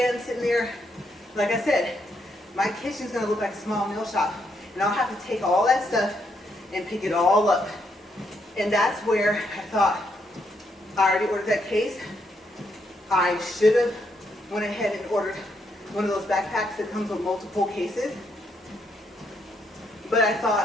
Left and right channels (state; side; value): normal; both; correlation 0.76